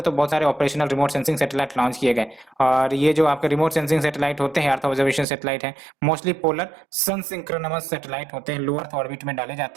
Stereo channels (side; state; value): left; drops out; at 5.2 s